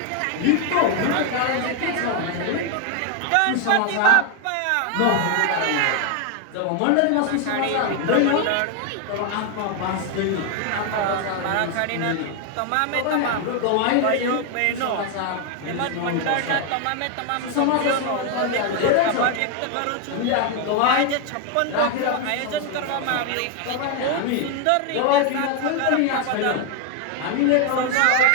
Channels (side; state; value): both; different; correlation 0.01